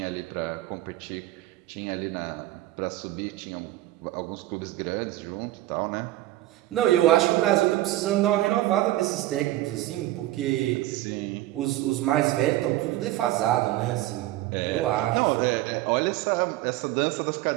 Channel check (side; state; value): left; quieter; 15.9 dB